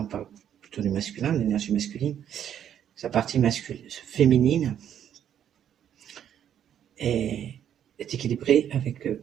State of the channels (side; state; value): left; quieter; 9.7 dB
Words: parle plutôt du masculin, de l'énergie masculine, sa partie féminine est équilibrée avec